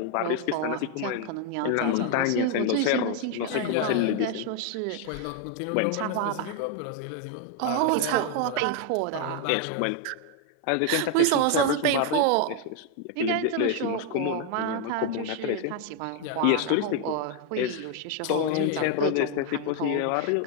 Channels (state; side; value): different; both; correlation 0.01